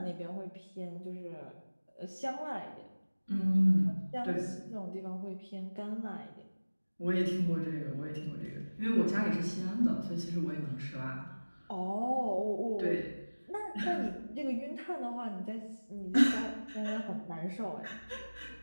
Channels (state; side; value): inverted; both; correlation -1.00